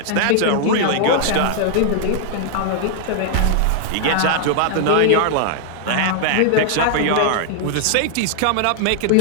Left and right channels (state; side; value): different; both; correlation -0.01